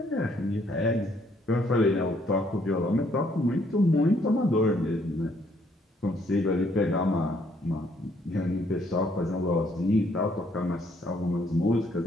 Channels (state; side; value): normal; both; correlation 0.67